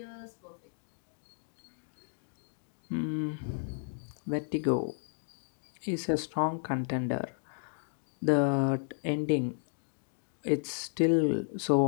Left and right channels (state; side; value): silent; right; digital silence